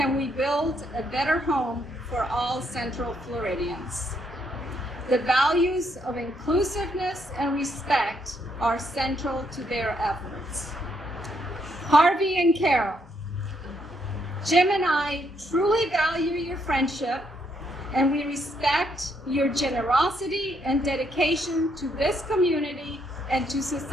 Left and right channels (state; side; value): normal; both; correlation 0.74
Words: we build a better home for all Central Floridians. The values of inclusiveness and respect are central to their efforts. Harvey and Carol, Jim and I truly value your friendship, and we respect your generosity and dedication to this community and to